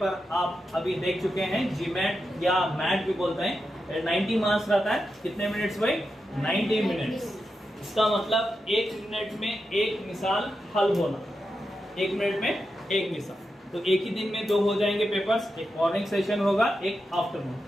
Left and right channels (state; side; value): normal; both; correlation 0.88